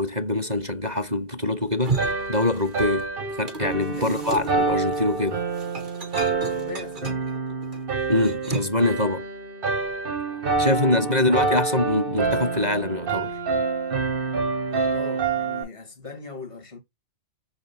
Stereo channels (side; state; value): left; late; 2.0 ms